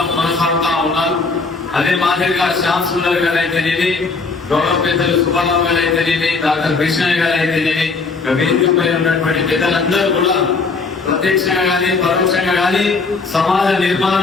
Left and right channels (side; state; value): right; quieter; 4.2 dB